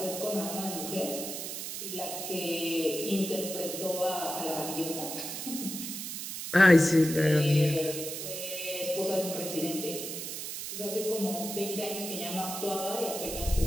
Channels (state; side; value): noise; right; hiss, 6 dB below the sound